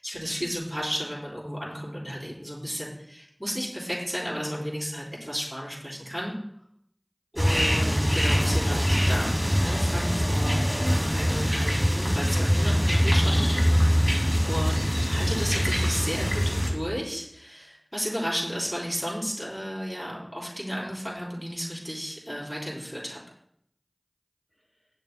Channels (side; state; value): both; identical; correlation 1.00